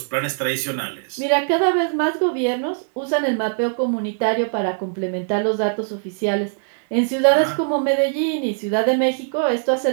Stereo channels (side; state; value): left; silent; digital silence